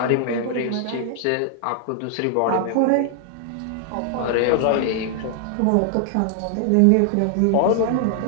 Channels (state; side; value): different; both; correlation -0.01